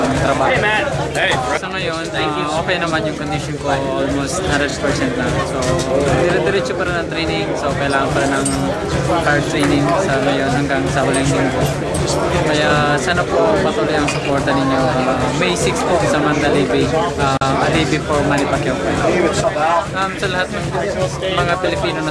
trabaho. Sa ngayon, okay naman yung condition ko, almost 100% na. So dire-diretso pa rin ang training, so kailangan pa rin ng hard training sa ngayon hanggang sa huling linggo. Kaya sana po patuloy ang suporta ninyo. May 6 po sa Mandalay Bay, Alibi for Manny Pacquiao. Sa lahat ng mga Pilipino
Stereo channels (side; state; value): both; identical; correlation 1.00